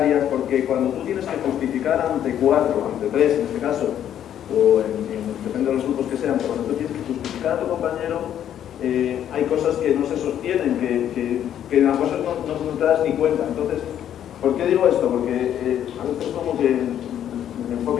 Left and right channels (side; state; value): right; quieter; 10.3 dB